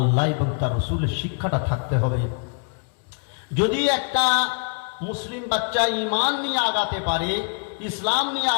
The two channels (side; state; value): right; quieter; 39.5 dB